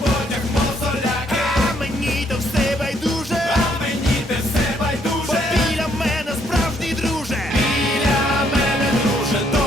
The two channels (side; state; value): both; normal; correlation 0.69